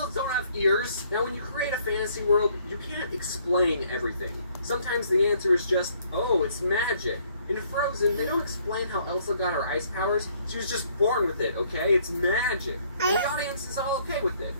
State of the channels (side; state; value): both; inverted; correlation -0.64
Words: don't have ears. Now, when you create a fantasy world, you can't explain everything. Sometimes the answer is just, oh, it's magic. In Frozen, they don't explain how Elsa got her ice powers. She was just born with it, okay? It's magic. And the audience is all okay with it,